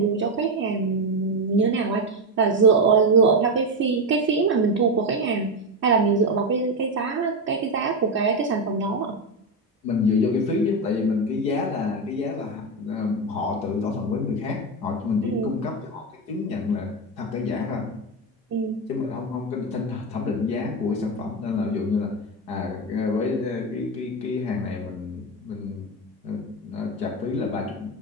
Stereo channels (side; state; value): both; normal; correlation 0.10